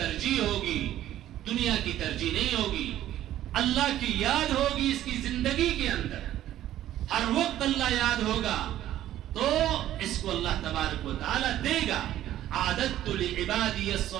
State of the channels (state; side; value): quieter; left; 12.9 dB